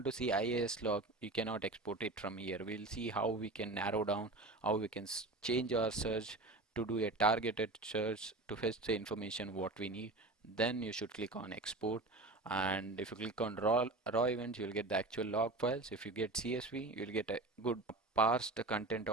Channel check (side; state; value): left; quieter; 3.0 dB